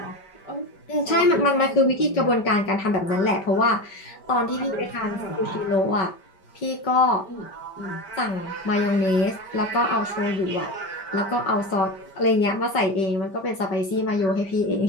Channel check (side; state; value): right; late; 5.2 ms